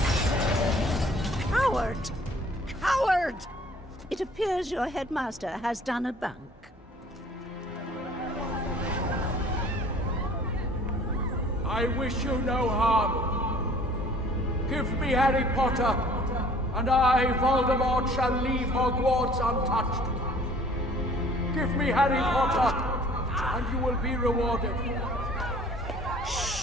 Coward! Coward! It appears your headmaster has done a bunk. I wish you no harm. Give me Harry Potter, and I, Voldemort, shall leave Hogwarts untouched. Give me Harry Potter, and you will be rewarded.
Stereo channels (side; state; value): both; normal; correlation 0.53